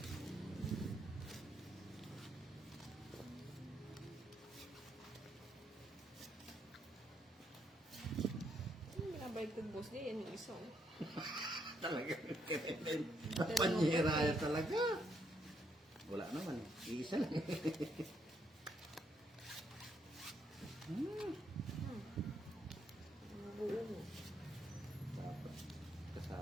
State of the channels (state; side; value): normal; both; correlation 0.75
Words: baliktad boss di, yan yung isa. Oh. Talaga. Panyera talaga. Wala naman. Iisa lang. Buo mo. Dapat